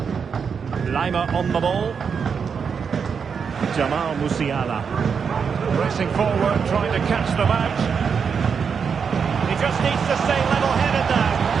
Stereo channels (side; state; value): left; quieter; 6.3 dB